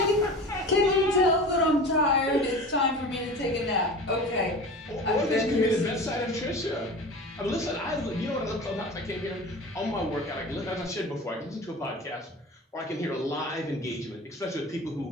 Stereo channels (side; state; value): both; normal; correlation 0.35